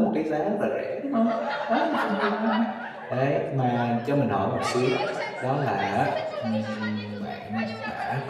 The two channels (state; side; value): identical; both; correlation 1.00